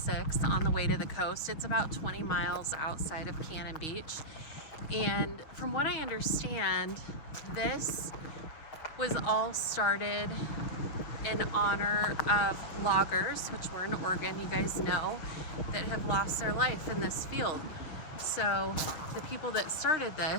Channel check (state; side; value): late; right; 6.4 ms